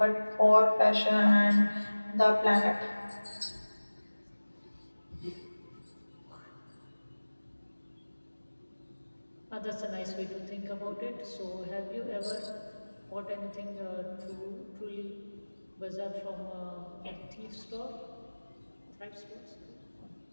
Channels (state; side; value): inverted; both; correlation -1.00